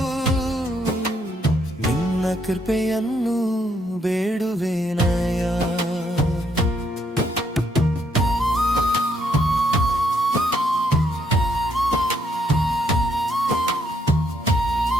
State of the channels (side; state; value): both; normal; correlation 0.72